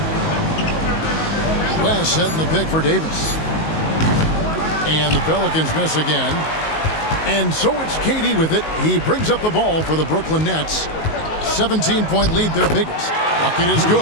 West setting the pick for Davis. And the Pelicans miss again. And so it's KD with it. He brings up the ball for the Brooklyn Nets. 17-point lead, their biggest. Bucket is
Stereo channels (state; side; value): late; right; 19 ms